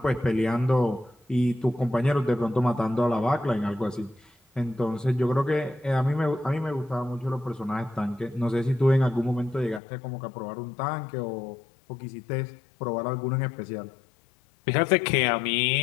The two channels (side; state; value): right; drops out; at 9.8 s